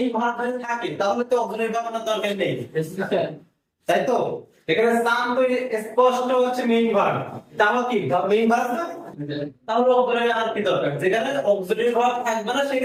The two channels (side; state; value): both; identical; correlation 1.00